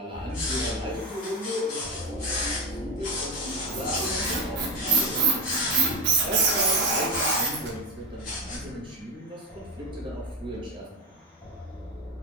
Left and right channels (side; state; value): both; normal; correlation 0.15